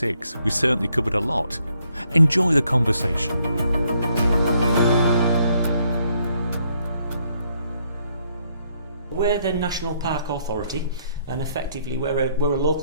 We certainly covered a lot. Enjoy the conversation. We're the National Park Authority, and effectively we're a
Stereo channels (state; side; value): inverted; both; correlation -0.72